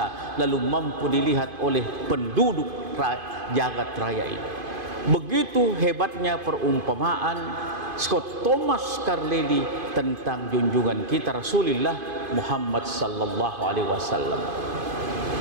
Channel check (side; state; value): left; late; 2.5 ms